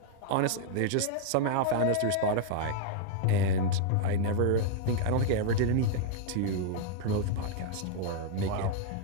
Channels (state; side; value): different; both; correlation -0.01